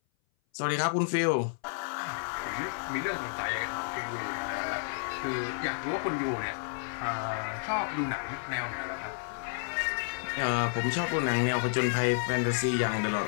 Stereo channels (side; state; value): right; silent; 57 dB below the other